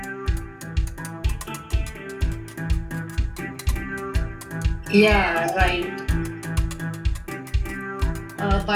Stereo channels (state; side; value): identical; both; correlation 1.00